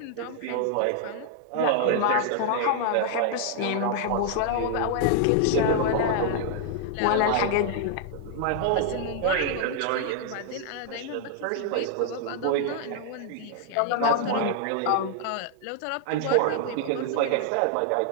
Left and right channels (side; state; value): both; different; correlation 0.00